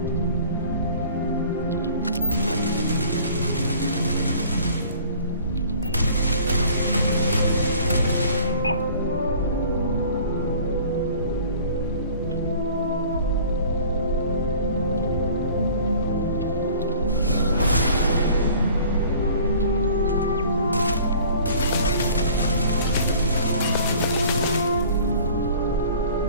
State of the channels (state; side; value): inverted; both; correlation -0.48